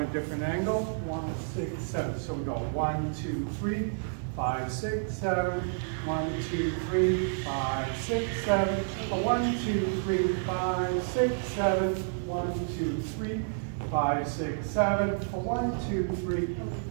different angle. 1, 6, 7. So we go 1, 2, 3, 5, 6, 7. 1, 2, 3, 5, 6, 7. 1, 2, 3, 5, 6, 7. 1, 2, 3, 5, 6, 7. 1, 2, 3,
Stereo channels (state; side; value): silent; left; 58 dB below the other